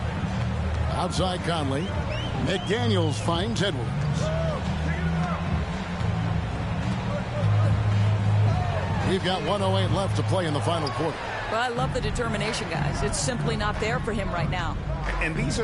Outside Conley. McDaniels finds Edwards. We've got 1:08 left to play in the final quarter. Well, I love the determination, guys. It's simply not there for him right now. And these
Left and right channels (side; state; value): both; identical; correlation 1.00